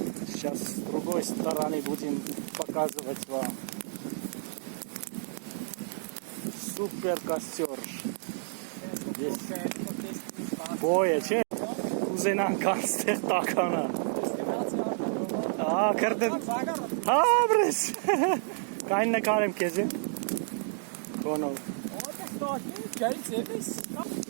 Сейчас с другой стороны будем показывать вам. Супер костер. Здесь boja, ce? Kuzenam kanster takana. Kırdım. Bres. Kaynına karım kezi. Kono.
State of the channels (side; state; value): left; silent; digital silence